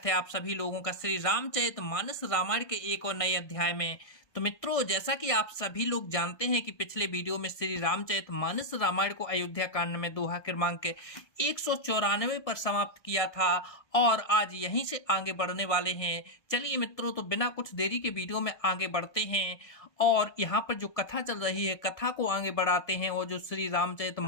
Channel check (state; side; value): late; right; 1.6 ms